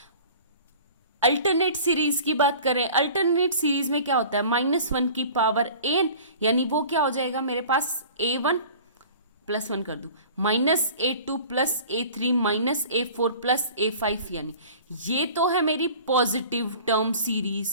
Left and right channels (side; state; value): both; inverted; correlation -0.44